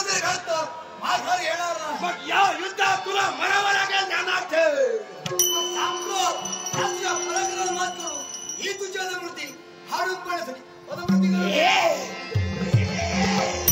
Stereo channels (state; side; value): identical; both; correlation 1.00